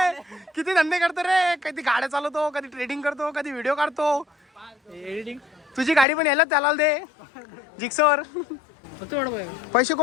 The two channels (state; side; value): drops out; right; at 6.1 s